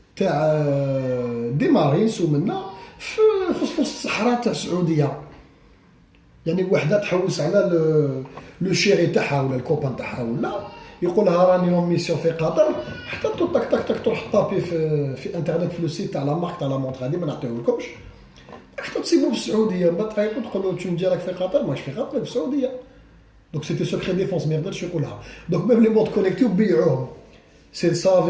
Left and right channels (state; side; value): identical; both; correlation 1.00